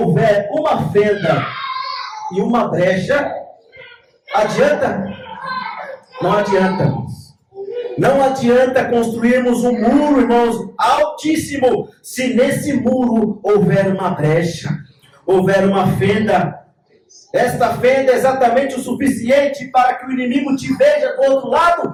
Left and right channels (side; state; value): both; identical; correlation 1.00